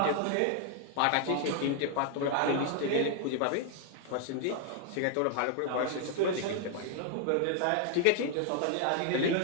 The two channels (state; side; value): different; both; correlation 0.00